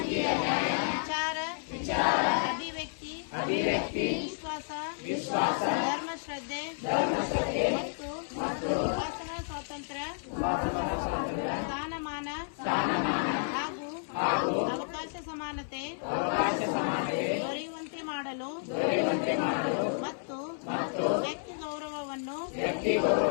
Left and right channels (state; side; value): silent; right; 57 dB below the other